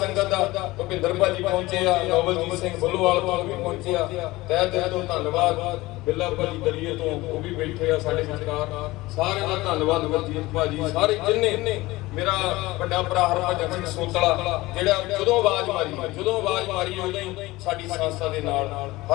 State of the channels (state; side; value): quieter; right; 19.7 dB